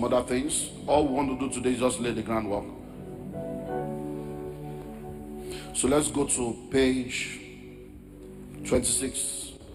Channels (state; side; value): identical; both; correlation 1.00